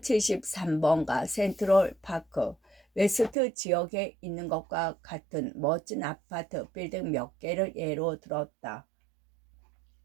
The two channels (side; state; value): left; drops out; at 3.4 s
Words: 센트럴 파크 웨스트 지역에 있는 것과 같은 멋진 아파트 빌딩 몇 개를 예로 들었다.